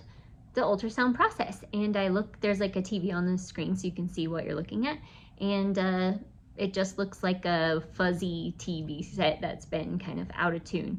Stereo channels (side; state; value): both; identical; correlation 1.00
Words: the ultrasound process. And I look, there's like a TV on the screen so you can see what you're looking at. And it just looks like a fuzzy TV set that's been kind of out of